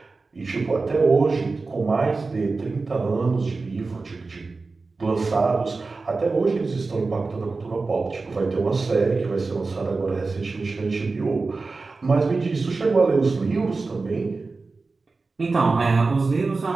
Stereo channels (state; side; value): quieter; left; 3.9 dB